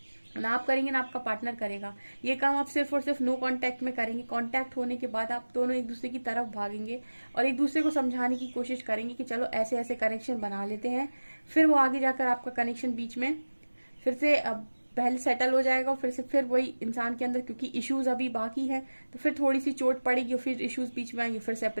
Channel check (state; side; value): inverted; both; correlation -1.00